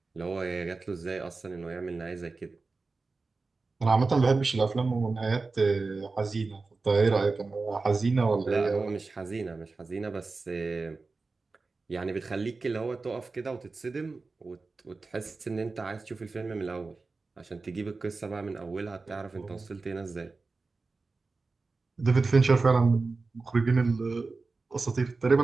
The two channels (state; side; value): quieter; left; 3.9 dB